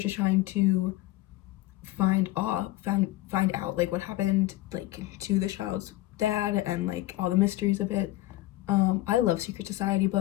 trying to find out like what happened like to the child's dad and like all the mysteries of it. I love secret society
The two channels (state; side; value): quieter; right; 17.0 dB